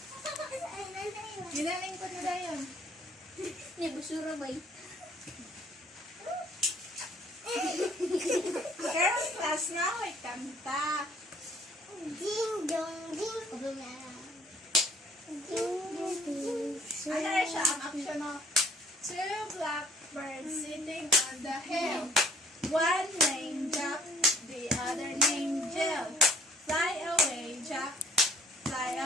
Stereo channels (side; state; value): both; normal; correlation 0.60